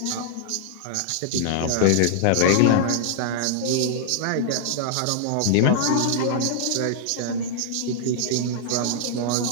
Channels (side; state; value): both; different; correlation -0.01